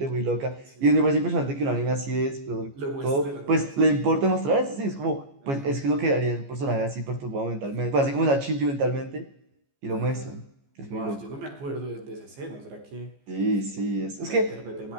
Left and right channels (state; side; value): late; left; 15 ms